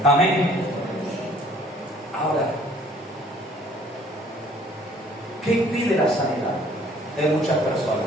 Amén. Ahora, ¿qué impide la sanidad de muchas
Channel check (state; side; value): normal; both; correlation 0.57